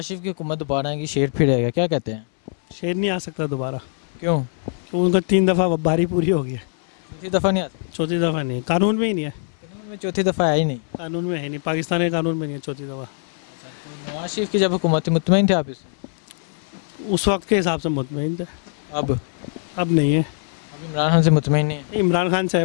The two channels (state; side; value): silent; right; 64 dB below the other